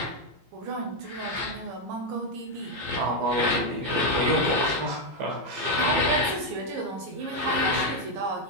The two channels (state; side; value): late; left; 15 ms